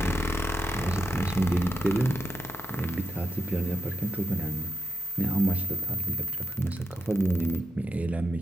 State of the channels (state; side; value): normal; both; correlation 0.85